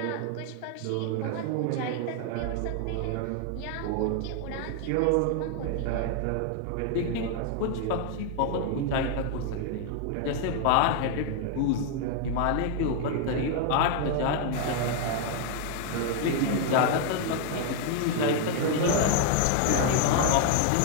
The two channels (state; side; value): different; both; correlation 0.00